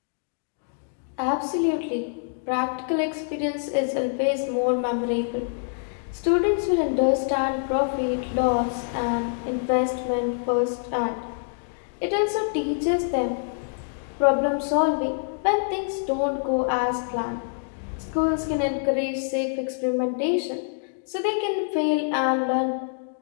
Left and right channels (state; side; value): silent; right; digital silence